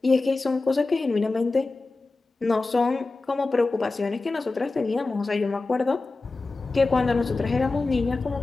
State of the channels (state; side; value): quieter; right; 3.5 dB